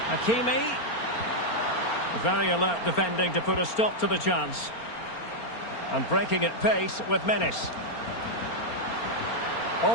Hakimi. Very alert defending to put a stop to the chance. And breaking at pace with menace.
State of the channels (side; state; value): right; late; 4.3 ms